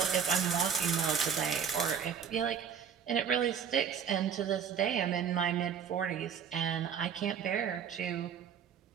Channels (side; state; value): left; quieter; 7.5 dB